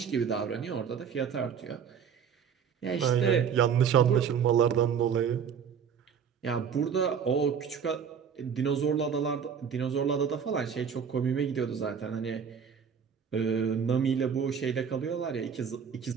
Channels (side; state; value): left; quieter; 7.2 dB